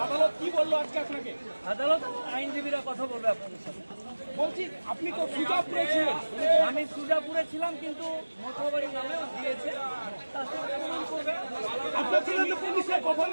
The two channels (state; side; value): inverted; both; correlation -1.00